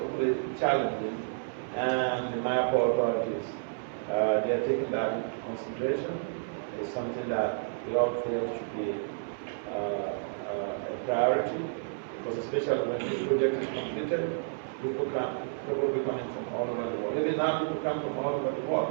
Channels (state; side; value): silent; left; 57 dB below the other